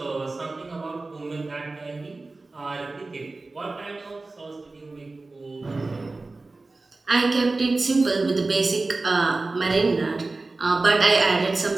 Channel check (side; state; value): left; quieter; 3.4 dB